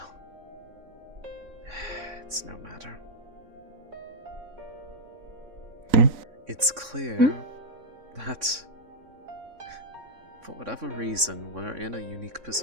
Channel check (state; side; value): late; left; 3.6 ms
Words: it's no matter. It's clear that, for whatever reason, we're in a unique